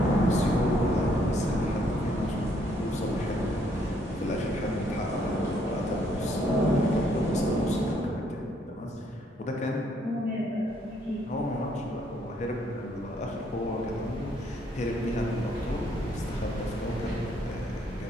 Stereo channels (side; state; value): both; normal; correlation 0.69